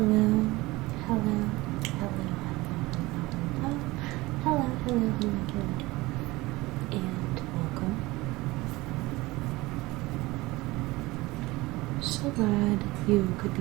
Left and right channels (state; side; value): quieter; left; 20.7 dB